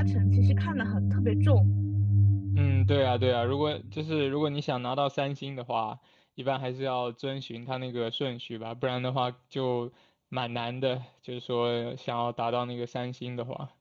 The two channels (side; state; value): both; identical; correlation 1.00